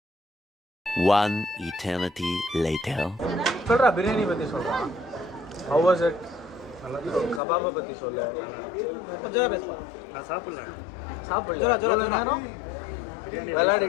One eternity later. சொல்றா பிரியாணி பற்றி சொல்கிறான். How was it? கபாபை பற்றி சொல்ல. நான் சாப்பிடல. எவ்வளோ நேரம்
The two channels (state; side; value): drops out; right; at 7.4 s